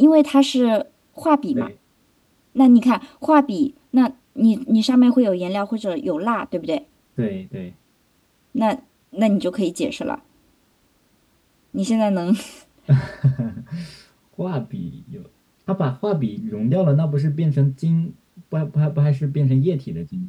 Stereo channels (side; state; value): both; identical; correlation 1.00